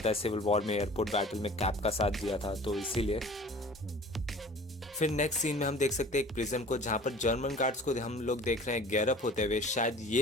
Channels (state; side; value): normal; both; correlation 0.45